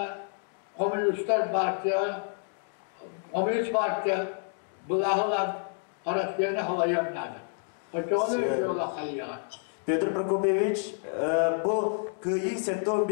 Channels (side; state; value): right; silent; 59 dB below the other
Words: Komünistler Partiya bulağılar araslarına havayanlardı. Onu öyle kayıyan. Petr Prokopyevich, bu kıyı